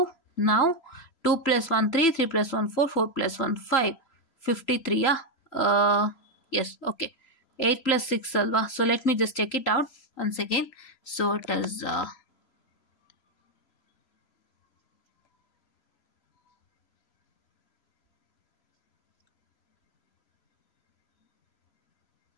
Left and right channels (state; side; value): late; right; 3.0 ms